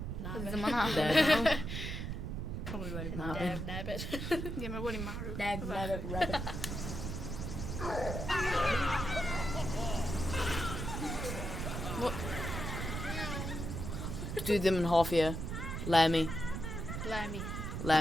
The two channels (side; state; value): right; noise; rumble, 4 dB below the sound